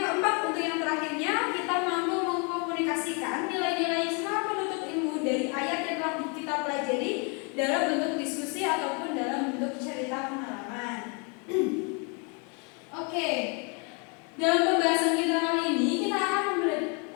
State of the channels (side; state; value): right; quieter; 34.7 dB